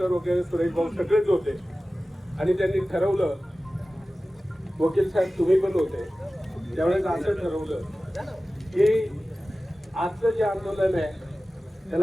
वगैरे सुरेश भाऊ सगळेच होते. आणि त्यांनी ठरवलं, वकील साहेब तुम्ही पण होते त्यावेळेस, असं ठरवलं की आजचं जे आंदोलन आहे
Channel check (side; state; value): both; normal; correlation 0.96